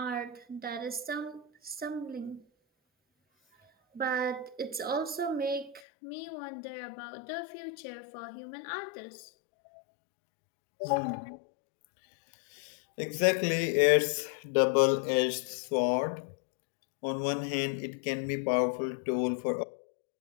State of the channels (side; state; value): right; drops out; at 5.8 s